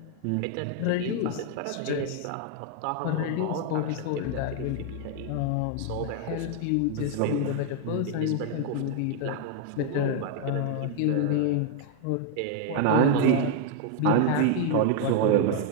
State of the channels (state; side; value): different; both; correlation 0.00